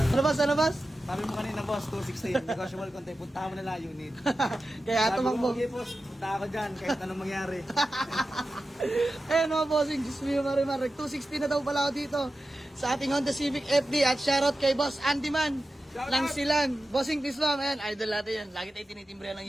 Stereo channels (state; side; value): normal; both; correlation 0.93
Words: Ano boss? Sabi mo kanina boss, 216, negotiable konti, puntahan mo na lang unit. Kaya Sabi mo, tumakbo. okay boss, punta ako dyan, kahit anong mangyari. Ayan mga Bossing, Diyos mio Marimar. 260 na daw pala ako dito sa ating Honda Civic FD at shoutout kay Boss Andy Man ng Silan. Bossing, please ma'am. Ayan, idol natin yan. Lagi tayo tinitimbre ng